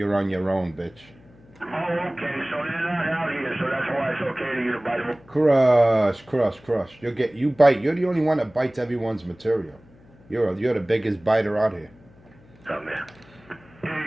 on your own, bitch. Oh, okay, so they're not out here, so that's why it's okay to get a bite of Crush. You bite. You're the only one that bites everyone's material. You're the biggest biter out here. something there.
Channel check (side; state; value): left; noise; hum, 26 dB below the sound